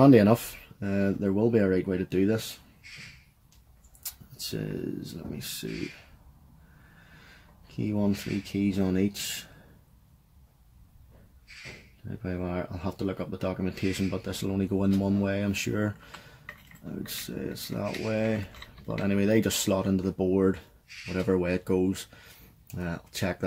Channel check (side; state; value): both; identical; correlation 1.00